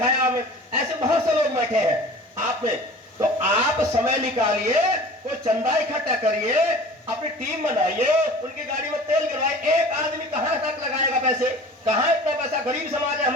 हमें, ऐसे बहुत से लोग बैठे हैं आप में। तो आप समय निकालिए, कोई चंदा इकट्ठा करिए, अपनी टीम बनाइए, उनकी गाड़ी में तेल गिरवाइए। एक आदमी कहां तक लगाएगा पैसे, कहां इतना पैसा, गरीब समाज है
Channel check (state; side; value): normal; both; correlation 0.42